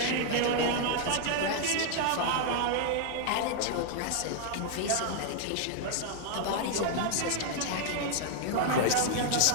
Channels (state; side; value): different; both; correlation 0.00